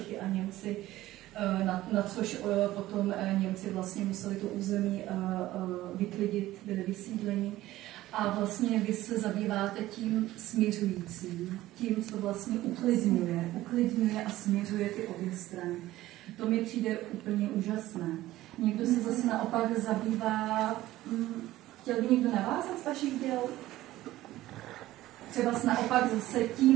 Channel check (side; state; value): left; quieter; 15.8 dB